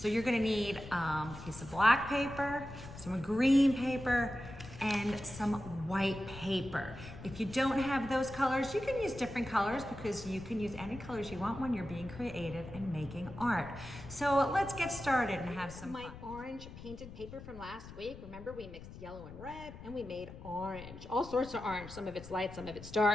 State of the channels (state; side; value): noise; left; rumble, 14 dB below the sound